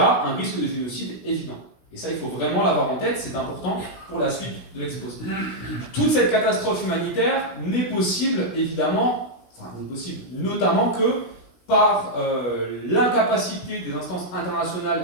un risque de génocide évident. Et ça, il faut vraiment l'avoir en tête, c'est important pour la suite de l'exposé. Toute cette catastrophe humanitaire n'est possible, évidemment, notamment que par l'incapacité des instances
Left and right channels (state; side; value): late; right; 17 ms